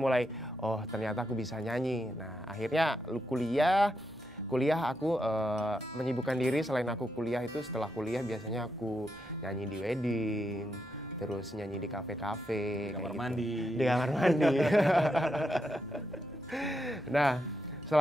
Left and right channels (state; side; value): noise; right; hum, 26 dB below the sound